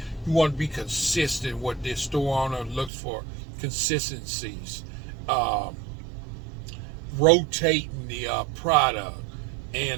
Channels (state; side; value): drops out; left; at 2.9 s